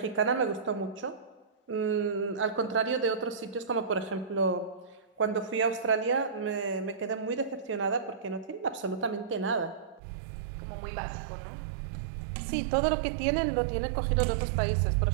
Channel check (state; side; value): drops out; left; at 10.0 s